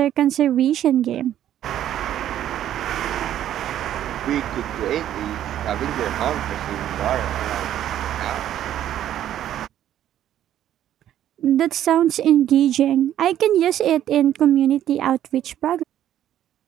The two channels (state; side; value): quieter; left; 11.5 dB